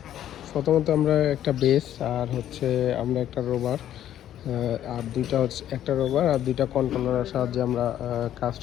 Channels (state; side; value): quieter; right; 11.4 dB